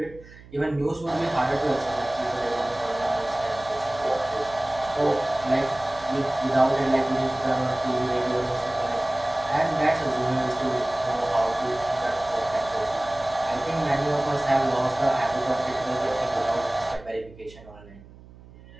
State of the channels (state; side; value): noise; right; hum, 21 dB below the sound